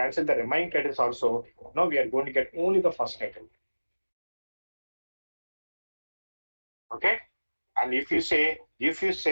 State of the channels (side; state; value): both; inverted; correlation -1.00